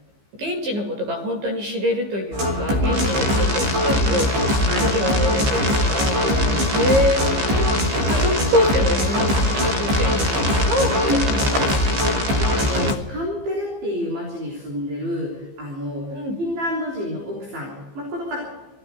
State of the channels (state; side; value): late; left; 15 ms